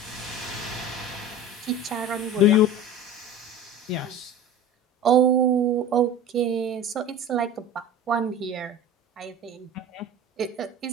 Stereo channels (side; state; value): both; normal; correlation 0.36